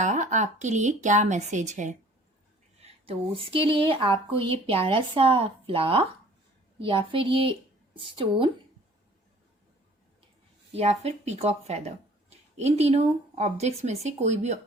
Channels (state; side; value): normal; both; correlation 0.52